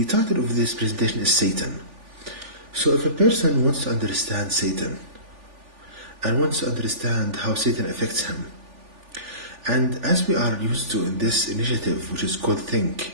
title of this presentation is Satan. So, if a person wants to understand Satan, and wants to understand how Satan affects him, and as we are used to in this initiative, which is called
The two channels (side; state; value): left; late; 3.4 ms